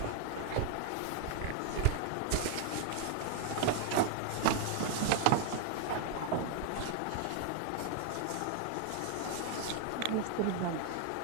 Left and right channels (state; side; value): different; both; correlation 0.00